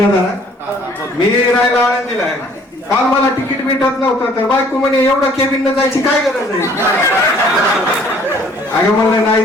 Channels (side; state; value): both; normal; correlation 0.57